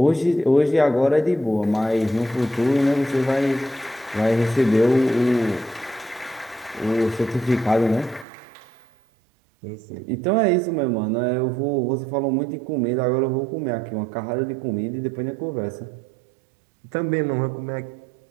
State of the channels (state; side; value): drops out; left; at 8.2 s